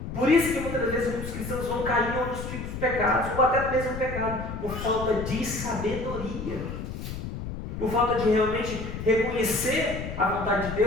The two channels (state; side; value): noise; left; rumble, 7 dB below the sound